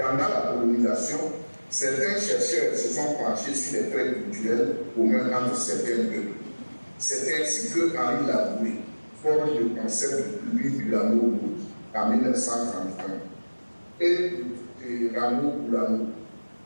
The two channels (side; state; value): both; inverted; correlation -1.00